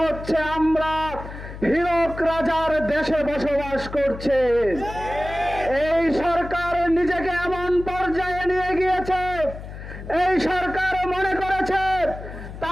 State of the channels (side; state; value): left; noise; hum, 11 dB below the sound